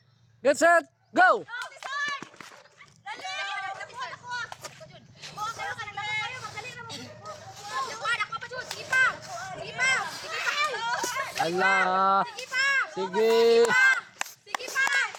Get set, go! Ala. Sige.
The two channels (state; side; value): identical; both; correlation 1.00